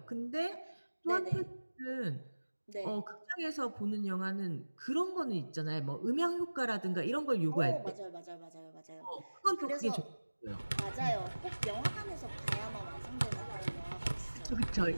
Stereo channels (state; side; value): inverted; both; correlation -1.00